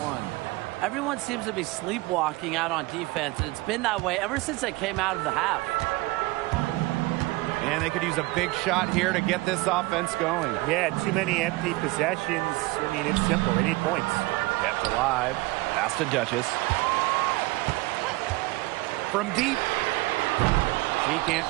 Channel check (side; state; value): left; quieter; 21.9 dB